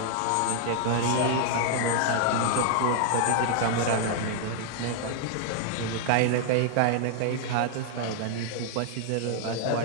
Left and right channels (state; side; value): different; both; correlation 0.00